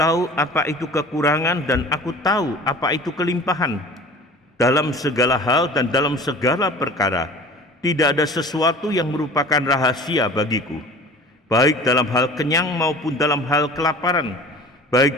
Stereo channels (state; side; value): normal; both; correlation 0.41